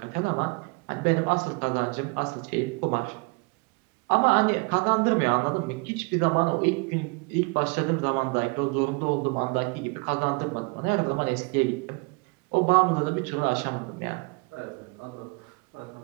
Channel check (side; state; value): left; quieter; 30.3 dB